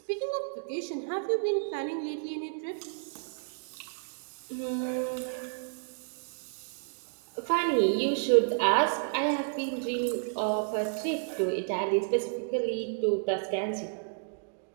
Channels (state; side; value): silent; left; digital silence